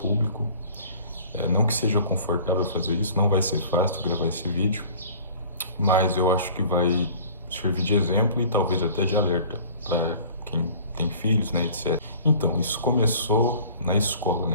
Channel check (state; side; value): inverted; both; correlation -0.47